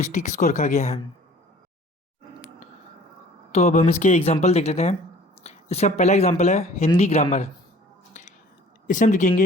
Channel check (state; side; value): normal; both; correlation 0.50